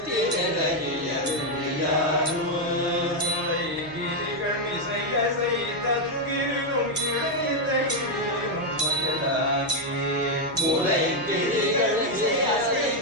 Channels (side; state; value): right; noise; hum, 22 dB below the sound